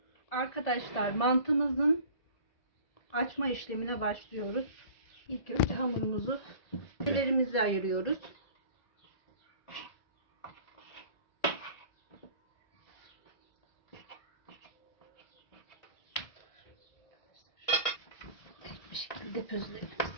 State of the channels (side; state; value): right; late; 1.8 ms